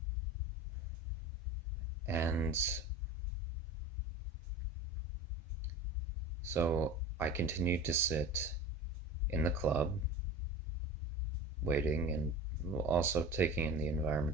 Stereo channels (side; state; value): both; normal; correlation 0.33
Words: And so I continued to sit in the club, waiting and also taking in the